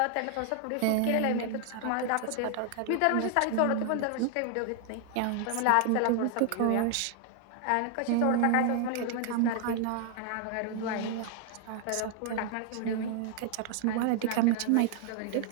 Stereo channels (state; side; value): different; both; correlation 0.00